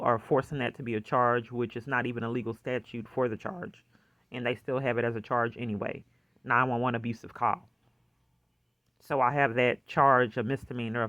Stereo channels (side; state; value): both; identical; correlation 1.00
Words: forcing that to be a charge, which is not even a legal statute for the charge, and they still have it as a charge anyway. 911 abusive call. So I have that charge, a misdemeanor